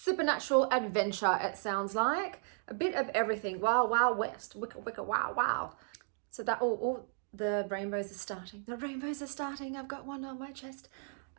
adventure, it sounds like. A bit of everything. Wild, wild west. Wicca, wicca, wow, wow. So that, the rainbows are starting. The rainbows are starting. I've got one on my chest.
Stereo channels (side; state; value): left; silent; digital silence